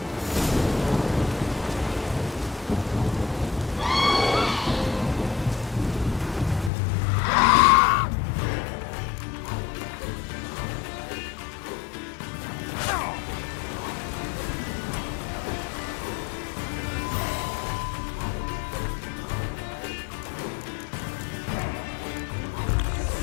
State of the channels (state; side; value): drops out; right; at 6.7 s